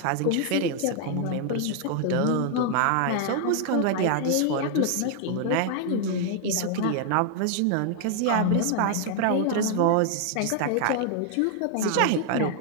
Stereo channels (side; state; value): both; different; correlation 0.00